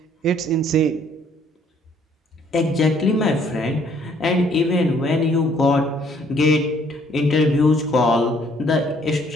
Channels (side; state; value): both; normal; correlation 0.63